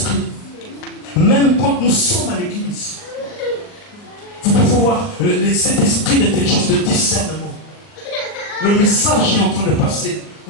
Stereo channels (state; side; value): late; right; 39 ms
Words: même quand nous sommes à l'église, vous pouvez voir cet esprit d'intelligence, de discernement. Le message est en train de passer.